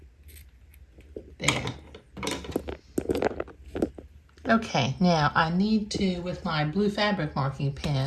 There. Okay, now I need to, with my blue fabric marking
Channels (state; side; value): identical; both; correlation 1.00